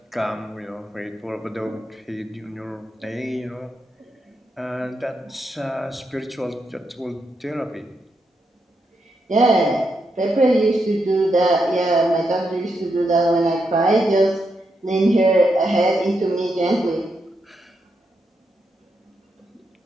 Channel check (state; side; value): normal; both; correlation 0.82